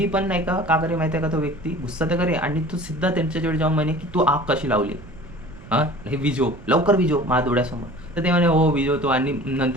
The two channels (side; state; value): right; noise; rumble, 18 dB below the sound